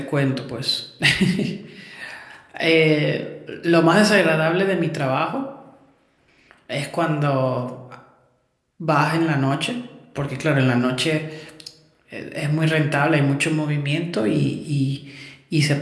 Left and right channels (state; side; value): identical; both; correlation 1.00